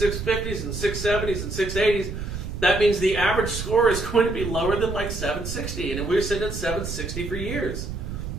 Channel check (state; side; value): noise; right; rumble, 6 dB below the sound